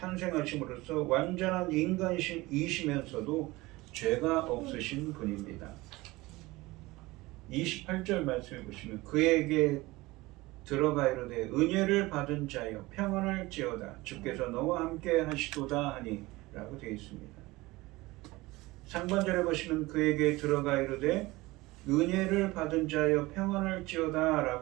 완전한 인간이시면서도 죄가 없으신 분입니다. 28절 말씀해 보시면 그에게 들어가 이르되 은혜를 받은 자여 평안할지어다 주께서 너와 함께 하시도다 하니 라고 되어 있습니다. 상반절에 보시면 그에게 들어가 이르되 은혜를 받은 자여 평안할지어다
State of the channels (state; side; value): quieter; left; 20.6 dB